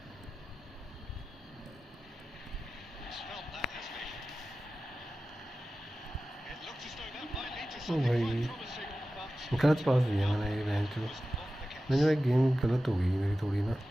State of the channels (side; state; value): both; normal; correlation 0.94